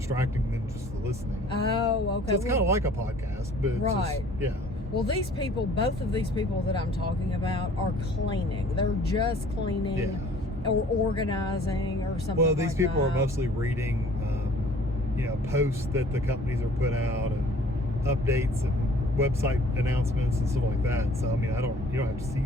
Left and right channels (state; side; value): normal; both; correlation 0.52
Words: than just the listening. Oh, okay. So it's kind of like a podcast, but it's right. just, yeah. Well, these people, both of these people that I'm talking about, are cleaning. They're just cleaning or organizing or something. Well, these like people that. are mostly reading, posts that the companies are put out, and updates and website announcements and stuff like that. So I mean, you don't have to